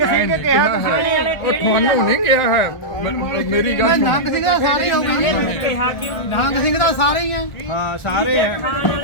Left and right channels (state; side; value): late; right; 1.5 ms